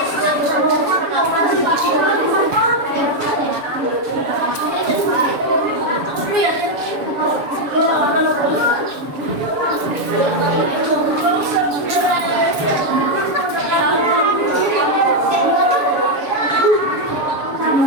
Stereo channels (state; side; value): late; left; 7.0 ms